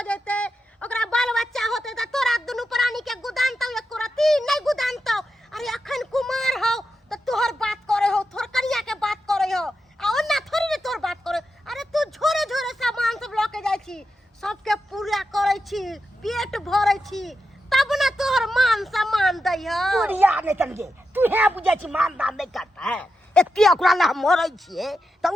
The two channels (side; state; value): both; normal; correlation 0.87